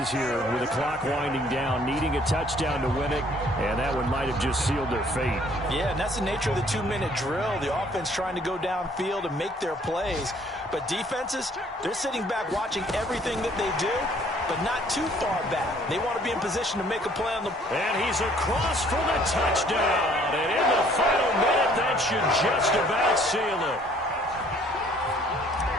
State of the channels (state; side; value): normal; both; correlation 0.59